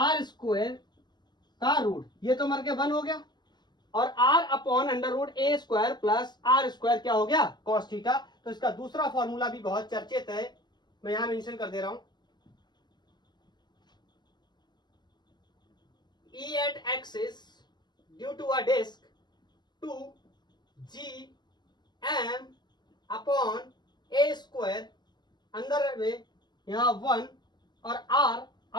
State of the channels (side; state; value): right; late; 0.21 ms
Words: r square का रूट, ये तो मर के 1 हो गया, और r upon under root a square plus r square क्या हो गया, cos थीटा। तो इसका दूसरा फॉर्मूला भी बहुत चर्चित है, मैं यहां मेंशन कर दे रहा हूं, E at axis due to a disk 2gm upon a square, अंदर में यहाँ 1 और r